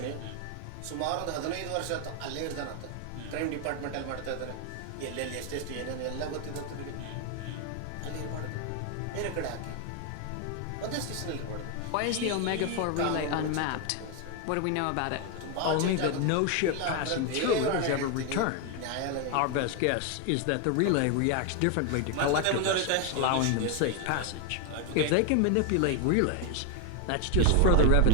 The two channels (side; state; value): both; different; correlation 0.01